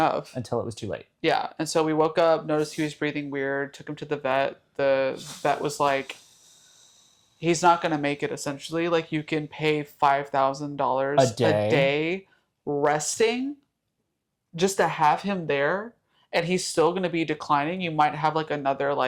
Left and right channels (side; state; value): both; identical; correlation 1.00